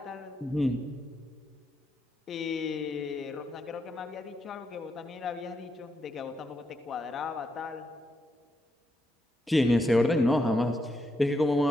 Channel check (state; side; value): normal; both; correlation 0.81